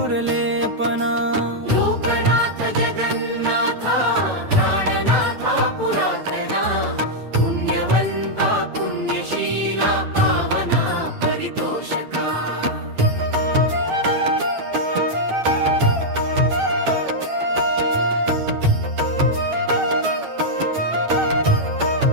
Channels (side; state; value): left; late; 9.2 ms